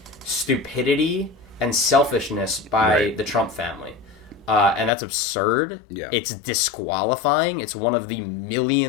stupidity and selfishness by the Trump family. And that's absurd. Yeah. It's disqualifying. It's one of the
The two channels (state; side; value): drops out; right; at 4.9 s